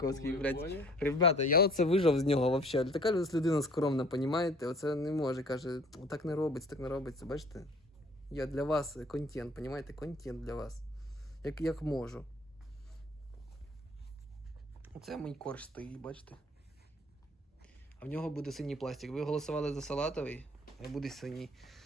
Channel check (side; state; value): both; normal; correlation 0.51